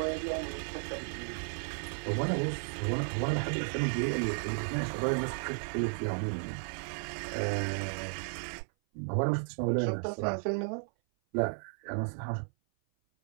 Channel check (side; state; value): left; silent; 55 dB below the other